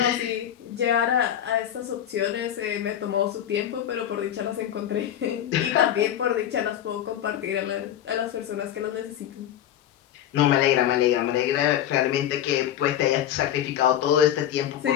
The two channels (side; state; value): right; quieter; 10.9 dB